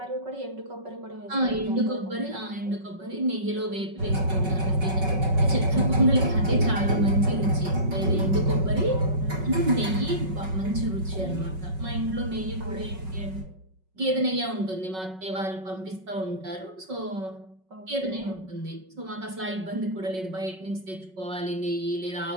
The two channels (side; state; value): left; late; 5.4 ms